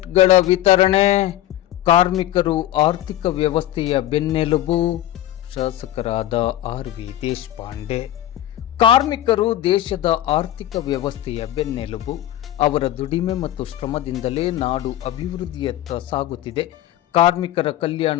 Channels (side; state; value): right; quieter; 13.4 dB